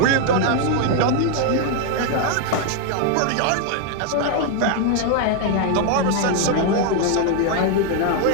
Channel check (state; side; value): different; both; correlation 0.00